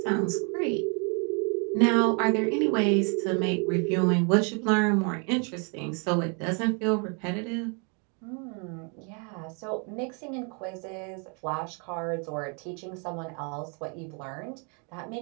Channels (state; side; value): quieter; left; 36.9 dB